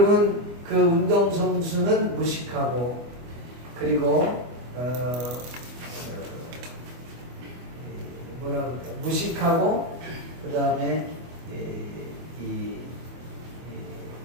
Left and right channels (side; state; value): left; late; 24 ms